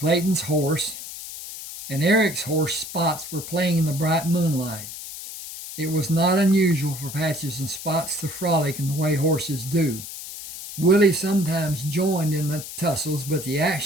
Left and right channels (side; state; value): left; noise; hiss, 11 dB below the sound